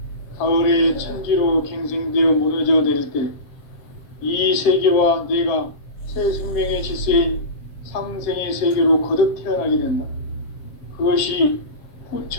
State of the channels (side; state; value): right; late; 7.5 ms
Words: 가을의 천지로 갱생되어 무너져 내릴 때 이 세계와 내가 새 생명의 질서인 상생의 세계로 거듭 태어나게 된다. 그것이